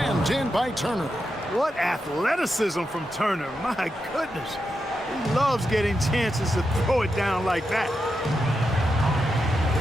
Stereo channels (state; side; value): normal; both; correlation 0.87